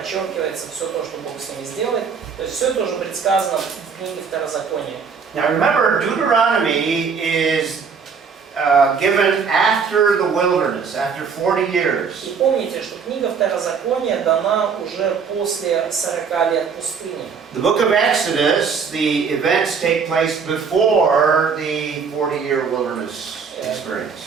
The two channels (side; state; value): left; quieter; 5.9 dB